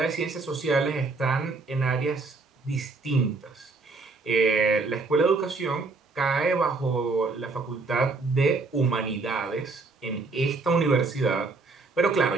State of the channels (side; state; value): left; quieter; 3.8 dB